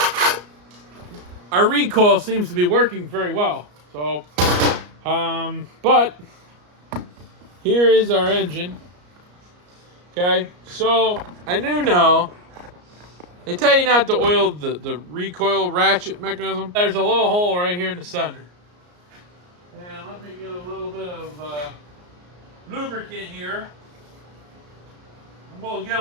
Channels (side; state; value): left; late; 34 ms